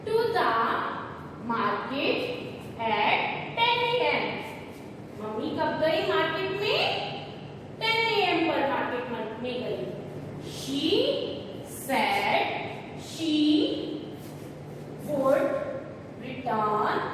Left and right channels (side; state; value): both; identical; correlation 1.00